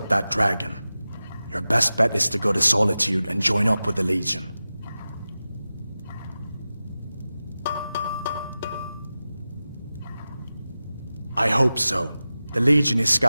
that dragon, your best bet is to go to Solitude and join up with the Legion. I hope so. The Legion is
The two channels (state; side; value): inverted; both; correlation -0.95